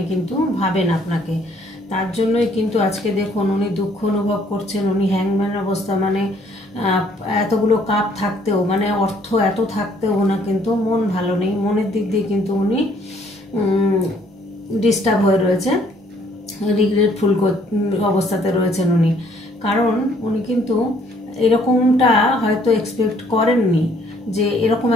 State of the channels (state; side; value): normal; both; correlation 0.63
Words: কিন্তু ভাবেন আপনাকে। তার জন্যই কিন্তু আজকে দেখুন উনি দুঃখ অনুভব করছেন। উনি হ্যাংম্যান অবস্থা, মানে এতগুলো কাপ থাকতেও, মানে অর্থ এত থাকতেও ওনার কিন্তু মন ভালো নেই, মনের দিক দিয়ে কিন্তু উনি ডিস্টার্ব হয়ে রয়েছে, রিগ্রেটফুল অবস্থাতে রয়েছেন উনি। কারণ উনি কিন্তু এরকমটা হয়তো এক্সপেক্ট করেননি যে এরকম